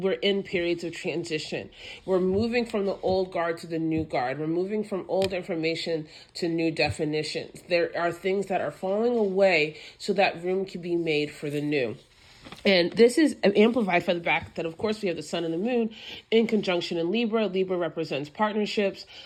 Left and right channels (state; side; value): identical; both; correlation 1.00